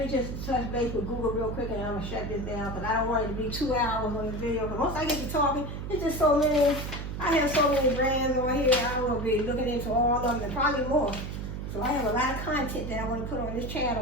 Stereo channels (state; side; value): noise; right; hum, 6 dB below the sound